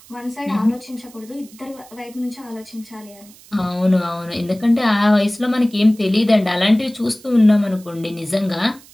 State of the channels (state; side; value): noise; right; hiss, 24 dB below the sound